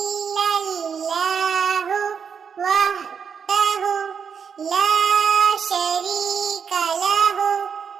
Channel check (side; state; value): left; quieter; 6.8 dB